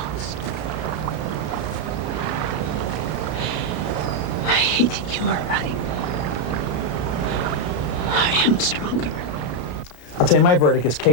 I hate that you are right. I am stronger. I'll tell you, my verdict is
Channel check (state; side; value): late; right; 33 ms